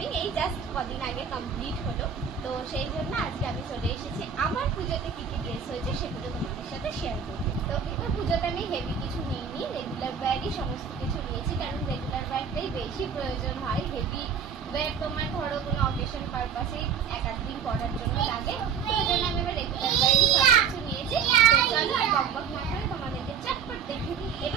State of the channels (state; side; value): quieter; left; 6.9 dB